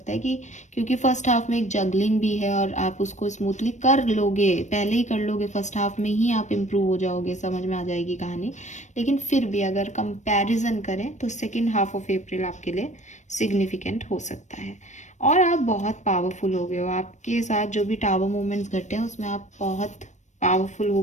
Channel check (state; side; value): late; right; 0.34 ms